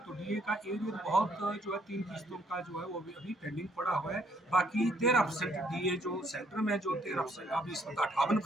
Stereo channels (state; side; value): normal; both; correlation 0.67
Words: डीए का एरियर बहुत जो है 3 किस्तों का जो है वो अभी पेंडिंग पड़ा हुआ है। बाकी 13% डीए जो सेंटर में जो 13% अभी इस वक्त